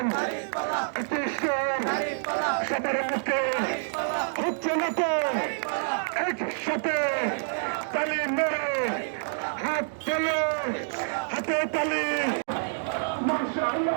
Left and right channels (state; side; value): silent; left; digital silence